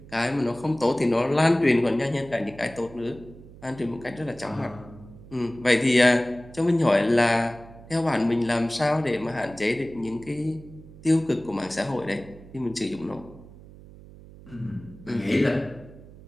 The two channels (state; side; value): noise; right; hum, 19 dB below the sound